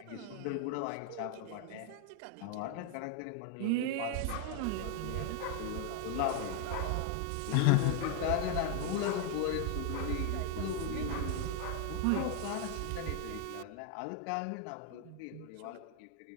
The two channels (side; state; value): both; different; correlation 0.01